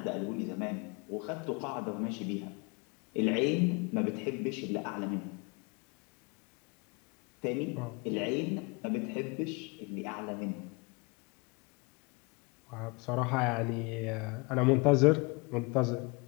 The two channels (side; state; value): right; quieter; 29.3 dB